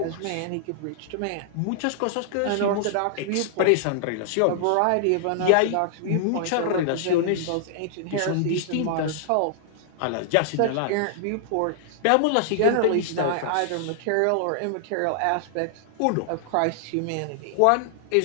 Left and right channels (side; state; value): both; different; correlation -0.01